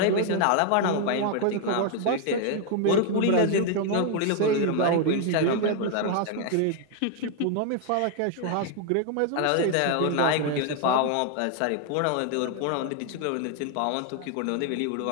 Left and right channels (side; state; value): both; different; correlation 0.00